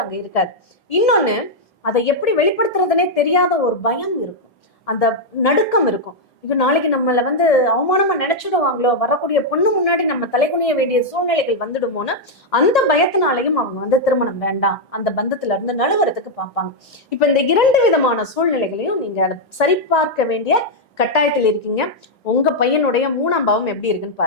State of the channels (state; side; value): normal; both; correlation -0.02